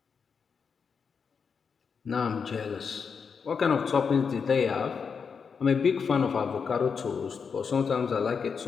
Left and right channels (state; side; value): quieter; right; 5.9 dB